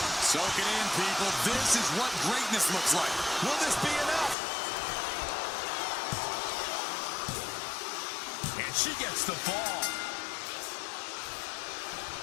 Soak it in, people. This is what greatness looks like. Will this be enough? And she gets the fall.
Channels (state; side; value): drops out; right; at 4.4 s